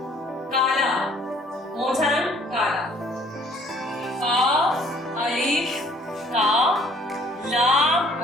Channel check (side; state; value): both; normal; correlation 0.58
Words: काला, कौन सा रंग? काला। का अलिफ का, लाम